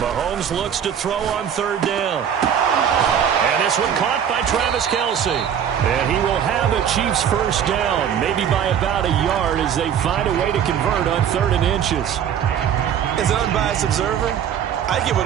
looks to throw on 3rd down. And this one caught by Travis Kelce. And he will have a Chiefs 1st down, maybe by about a yard as they find a way to convert on 3rd and inches. As an unbiased observer, I think it would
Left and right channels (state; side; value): quieter; left; 8.8 dB